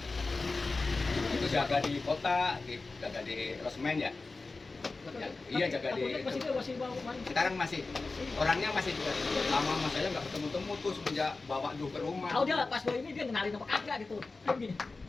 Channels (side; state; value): right; quieter; 3.7 dB